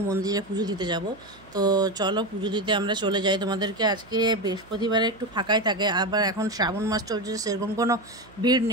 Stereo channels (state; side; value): noise; right; hum, 25 dB below the sound